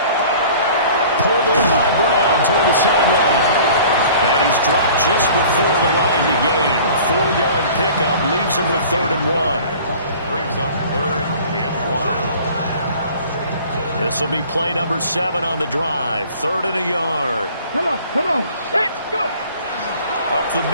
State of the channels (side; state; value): both; inverted; correlation -0.47